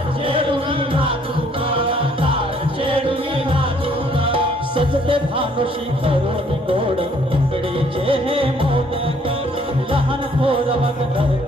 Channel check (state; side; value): normal; both; correlation 0.63